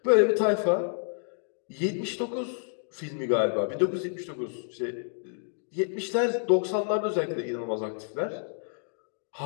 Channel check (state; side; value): silent; right; digital silence